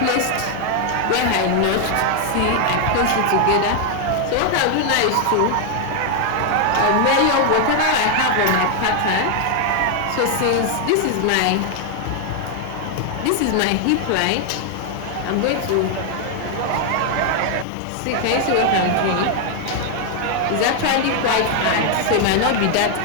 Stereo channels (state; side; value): different; both; correlation 0.00